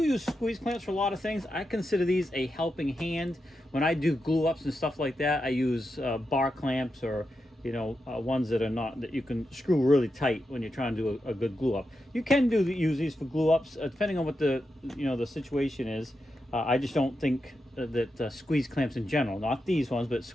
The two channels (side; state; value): both; normal; correlation 0.87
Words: squeeze clamps for a lot of things. I consider these a helping hand. When I do glue ups and stuff like that, I use bar clamps or ones that are not, that you can screw really tight when you're trying to do a good glue up. You can use these for glue ups depending on what the the situation is. I just don't think that squeeze clamps in general, not these ones, but